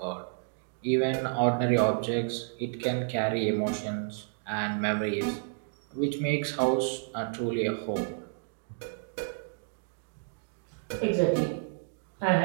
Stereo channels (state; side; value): silent; left; digital silence